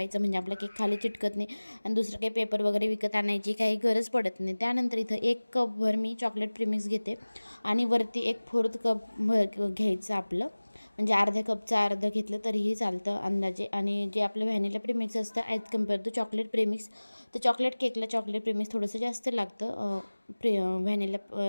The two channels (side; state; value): both; inverted; correlation -1.00